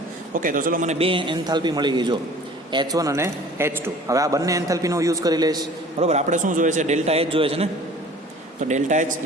ઓકે, તો ચલો મને બે એન્થાલ્પી મળી ગઈ. જો H1 અને H2. હવે આ બંને એન્થાલ્પીનો યુઝ કરી લઈશ, બરાબર. આપણે શું જોઈએ છે? ડેલ્ટા H જોઈએ છે ને. તો delta H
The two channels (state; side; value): normal; both; correlation 0.47